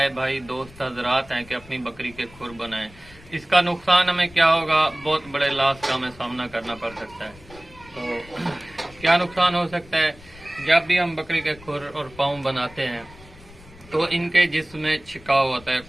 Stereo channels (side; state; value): left; noise; rumble, 22 dB below the sound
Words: भाई दोस्त हजरात हैं, कि अपनी बकरी के खुर बनाएं। इसका नुकसान हमें क्या होगा, बहुत बड़े लॉस का हमें सामना करना पड़ सकता है। तो क्या नुकसान हो सकता है, जब भी हम बकरी के खुर और पाँव बनाते हैं तो इनके जिस्म में छिकाव होता है